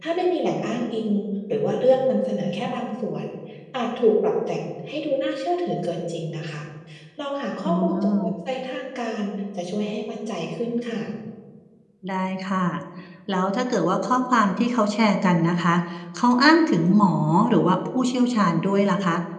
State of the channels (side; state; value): both; identical; correlation 1.00